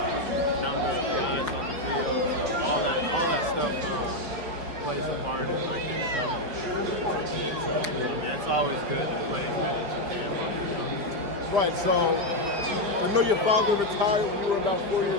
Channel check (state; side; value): late; left; 5.3 ms